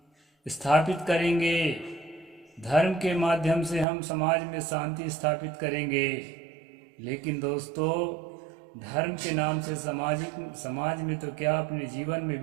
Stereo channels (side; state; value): left; drops out; at 3.9 s